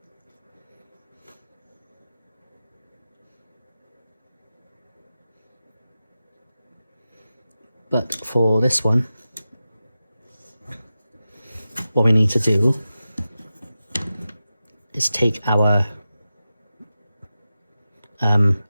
But for this one, what we need to do is take our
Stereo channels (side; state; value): both; inverted; correlation -0.93